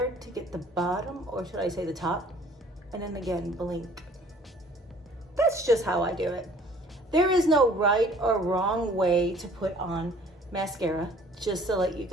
to get the bottom, or should I say the top? And then again, blink. That's just how I do it. There is no right or wrong way to put on mascara, just to let you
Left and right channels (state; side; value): normal; both; correlation 0.54